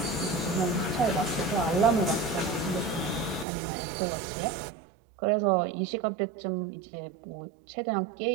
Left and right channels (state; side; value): drops out; left; at 3.5 s